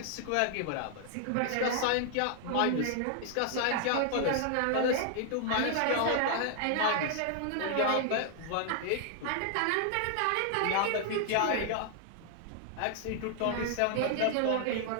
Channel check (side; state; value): both; different; correlation 0.00